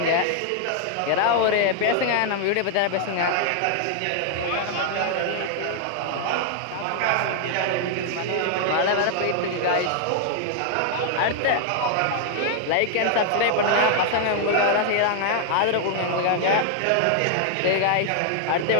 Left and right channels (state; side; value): different; both; correlation 0.00